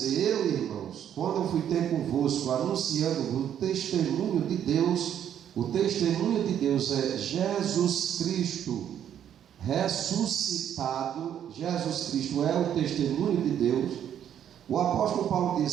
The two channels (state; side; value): quieter; left; 9.7 dB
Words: eu, irmãos, quando eu fui ter convosco anunciando o testemunho de Deus, o testemunho de Deus é Jesus Cristo ressuscitado. Jesus Cristo é o testemunho de Deus. O apóstolo Paulo